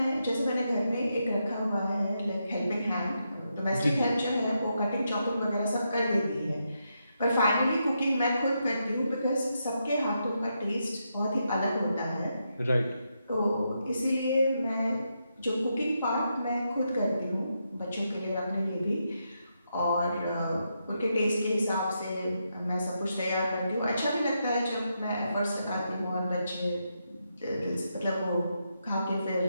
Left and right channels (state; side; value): inverted; both; correlation -0.83